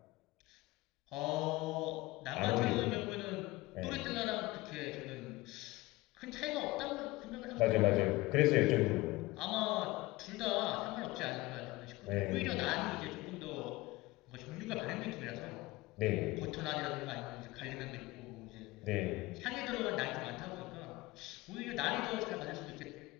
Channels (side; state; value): right; quieter; 20.1 dB